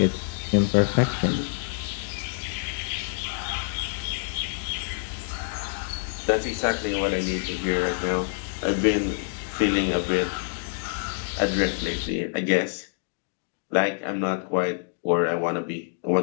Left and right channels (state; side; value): silent; right; digital silence